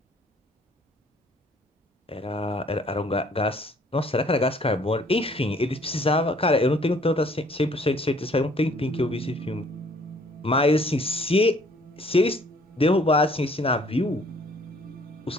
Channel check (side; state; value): both; normal; correlation 0.59